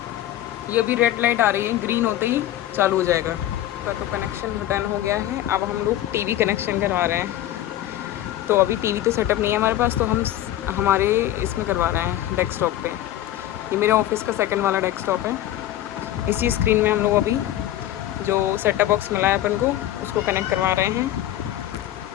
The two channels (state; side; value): quieter; right; 13.3 dB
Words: ये अभी रेड लाइट आ रही है, ग्रीन होते ही चालू हो जाएगा। तो कनेक्शन डन हो गया है। अब हम लोग टीवी कनेक्शन करवा रहे हैं। तो अभी टीवी तो सेटअप नहीं है हमारे पास, तो हम हमारे इसमें करवा रहे हैं डेस्कटॉप पे। ये मेरे ऑफिस का सेकंड वाला डेस्कटॉप है। इसी स्क्रीन में हम लोग अभी जो सेटअप बॉक्स मिला है अपन को उसको कनेक्ट करवा रहे हैं।